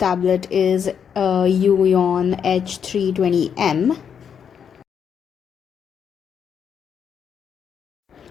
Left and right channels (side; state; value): right; quieter; 7.5 dB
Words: is a HUION H320M.